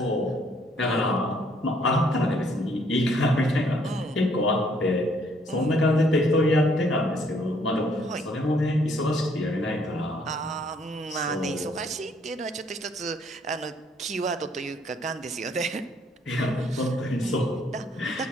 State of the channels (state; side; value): normal; both; correlation 0.66